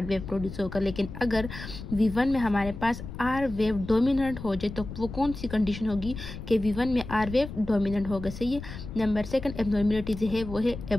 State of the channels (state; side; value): noise; left; rumble, 10 dB below the sound